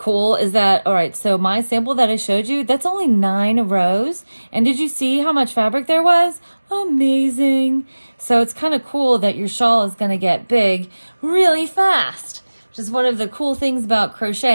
is that, all right, so my sample that I showed you, that's only 9 rows. And did you see how much fabric there was? Amazing. So it's kind of cool that your shawl is going to get big really fast, which is one of the cool things about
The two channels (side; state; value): both; inverted; correlation -1.00